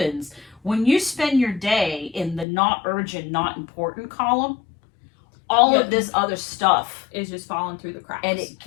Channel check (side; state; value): right; drops out; at 2.5 s